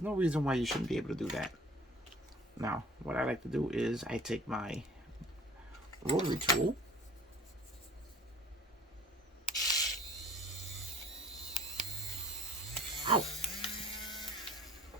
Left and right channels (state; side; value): normal; both; correlation 0.49